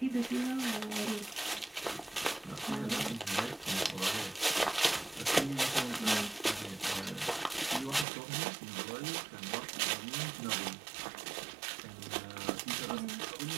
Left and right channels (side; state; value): left; drops out; at 8.1 s